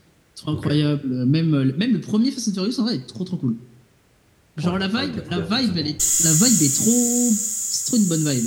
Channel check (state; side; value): identical; both; correlation 1.00